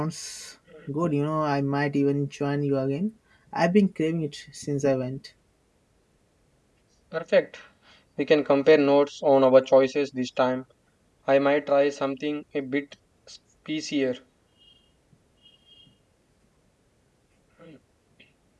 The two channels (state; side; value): identical; both; correlation 1.00